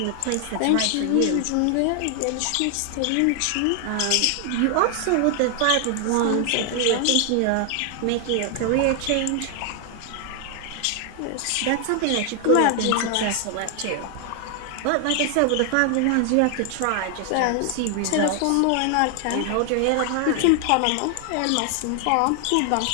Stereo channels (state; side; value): different; both; correlation 0.00